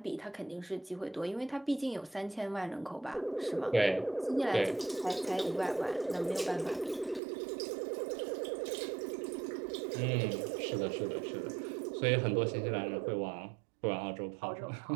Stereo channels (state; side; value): drops out; left; at 7.2 s